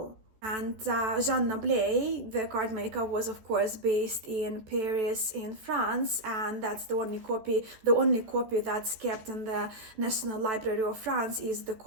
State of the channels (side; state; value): left; late; 14 ms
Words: And Jean Noblet, the card maker, was of course based in Paris in France, and that's the only copy that's kept in the National Library of France is the